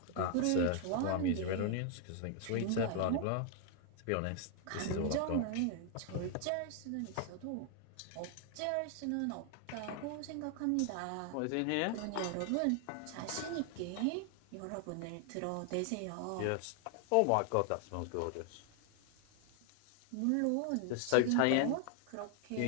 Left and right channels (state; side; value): different; both; correlation 0.00